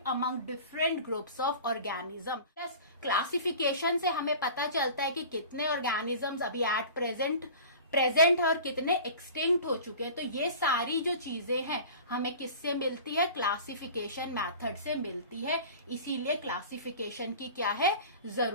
among different groups of organism, classification से हमें पता चलता है कि कितने ऑर्गेनिजम्स अभी एट प्रेजेंट है और कितने एक्सटिंक्ट हो चुके हैं। तो ये सारी जो चीजें हैं हमें किससे मिलती है, क्लासिफिकेशन मेथड से मिलती है। इसीलिए क्लासिफिकेशन की क्या है,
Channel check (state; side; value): inverted; both; correlation -0.39